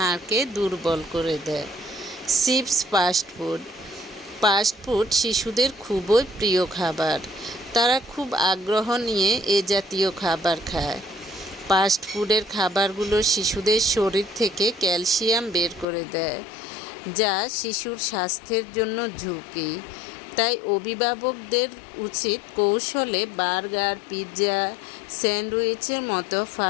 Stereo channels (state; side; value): drops out; right; at 15.9 s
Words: দুর্বল করে দেয়। চিপস, ফাস্টফুড শিশুদের খুবই প্রিয় খাবার। তারা খুব আগ্রহ নিয়ে এ জাতীয় খাবার খায়। ফাস্টফুডের খাবারগুলো শিশুদের শরীর থেকে ক্যালসিয়াম বের করে দেয়, যা শিশুর স্বাস্থ্যের জন্য ঝুঁকি। তাই অভিভাবকদের উচিত কৌশলে বার্গার, পিৎজা, স্যান্ডউইচের মতো